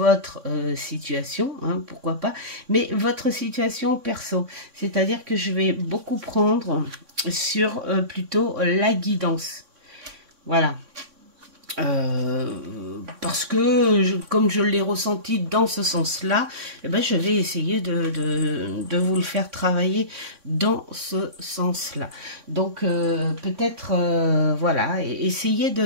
situation, hein, pourquoi pas, mais votre situation perso, c'est-à-dire que je vais beaucoup prendre sur plutôt la guidance, voilà. Parce que comme je l'ai ressenti dans ce sens-là, eh ben, je vais essayer de vous le faire travailler dans ce sens-là. Donc peut-être voilà, essayez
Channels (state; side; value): late; left; 3.6 ms